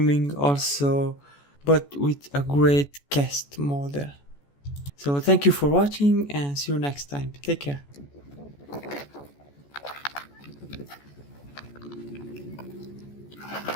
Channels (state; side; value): late; right; 14 ms